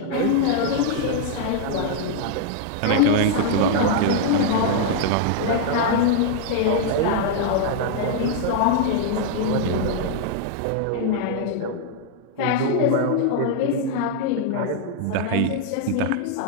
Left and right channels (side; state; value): both; different; correlation -0.01